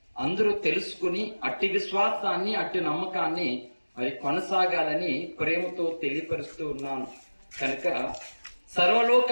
అందరూ తెలుసుకుని అట్టి విశ్వాసాన్ని, అట్టి నమ్మకాన్ని మరి కొనసాగాలని ప్రేమతో తెలియపరుస్తూ ఉన్నాను. కనుక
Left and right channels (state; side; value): inverted; both; correlation -1.00